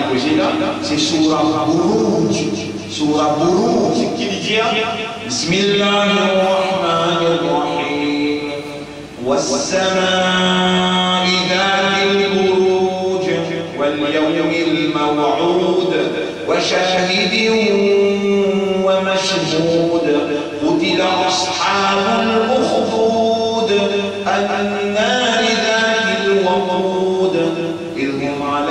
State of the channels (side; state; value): both; identical; correlation 1.00